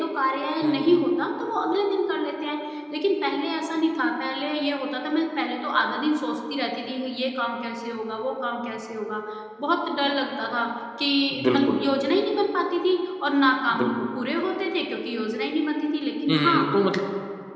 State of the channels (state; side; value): identical; both; correlation 1.00